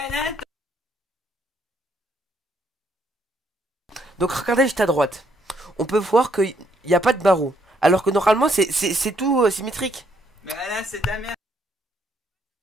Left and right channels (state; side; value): normal; both; correlation 0.71